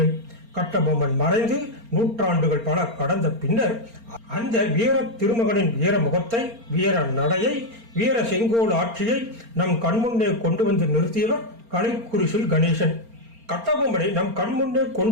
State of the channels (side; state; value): left; late; 4.4 ms